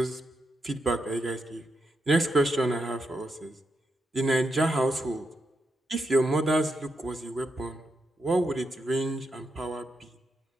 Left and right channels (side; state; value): both; normal; correlation 0.84